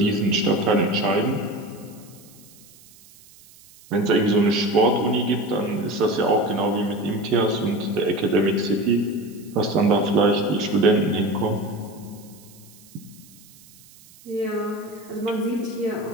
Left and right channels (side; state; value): right; noise; hiss, 24 dB below the sound